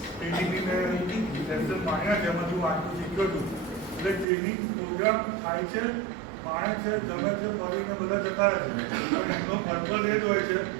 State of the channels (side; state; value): left; drops out; at 4.2 s